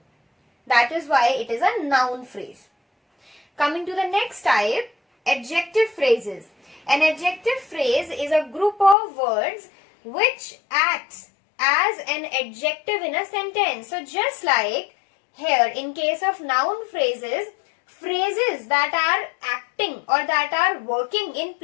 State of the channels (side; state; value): right; drops out; at 9.0 s